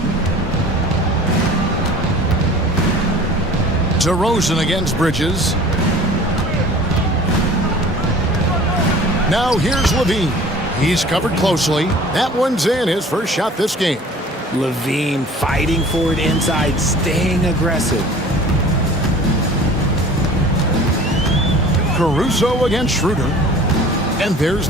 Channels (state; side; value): normal; both; correlation 0.45